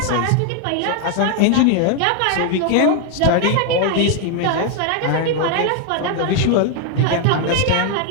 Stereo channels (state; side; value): different; both; correlation 0.01